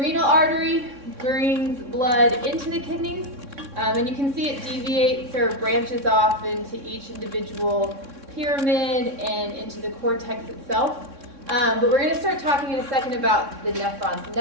artery brings blood into the kidneys, and you can see it deviates or branches off into each individual pyramid and into the cortex itself. But we're going to start talking in a second about the nephrons. The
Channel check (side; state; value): left; late; 3.6 ms